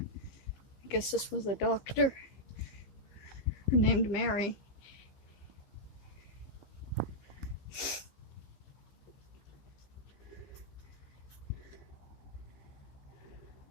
guess this was a doctor named Mary.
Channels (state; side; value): late; right; 15 ms